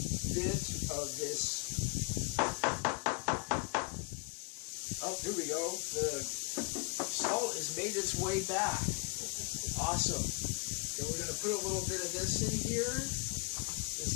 bit of this. Oh, here we go. The salt has made its way back. Awesome. Then we're going to put a little bit of this in here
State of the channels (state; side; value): quieter; right; 31.1 dB